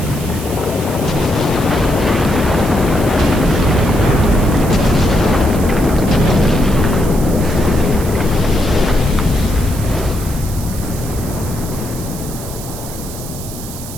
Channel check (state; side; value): noise; right; hiss, 13 dB below the sound